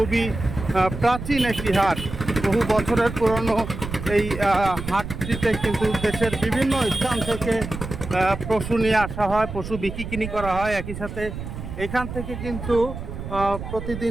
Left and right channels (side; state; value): right; noise; rumble, 8 dB below the sound